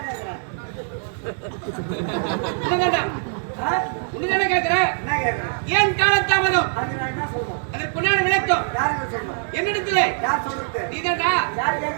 உன்னை கேட்கிறேன் ஏன் காலத்தாமதம் அதற்கு உண்டான விளக்கம் என்னிடத்துல நீதான்டா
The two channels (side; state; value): left; silent; 64 dB below the other